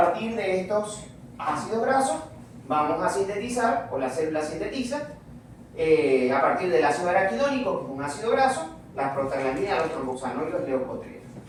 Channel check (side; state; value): both; identical; correlation 1.00